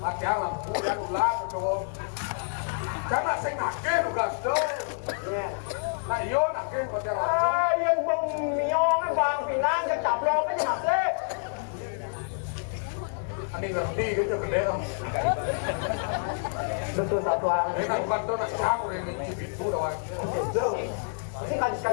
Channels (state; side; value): silent; right; digital silence